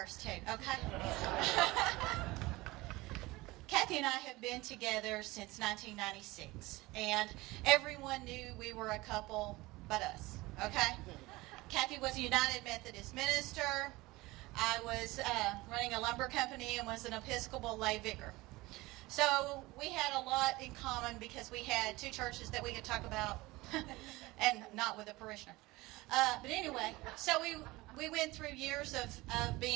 too, okay? Kathy and I have been together since 1996, and everyone knew we were a couple but us, okay? Kathy was a United Methodist minister. I was running a lumber company and was an Episcopal lay vicar. So we had a lot in common because we had two churches that we could talk about, and not with a parishioner. But anyway, so we went through years of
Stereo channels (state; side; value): quieter; left; 20.7 dB